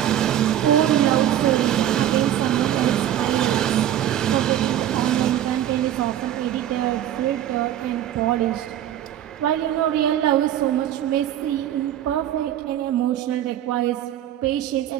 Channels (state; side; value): quieter; left; 11.5 dB